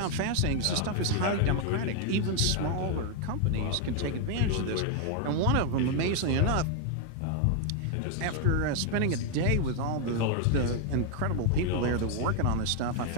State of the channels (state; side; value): different; both; correlation 0.00